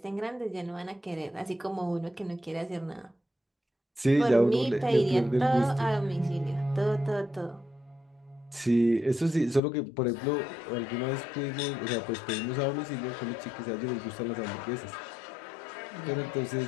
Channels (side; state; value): right; drops out; at 9.6 s